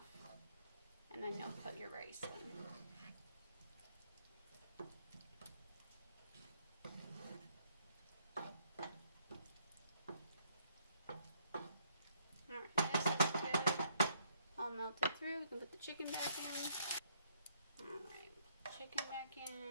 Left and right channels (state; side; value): inverted; both; correlation -0.69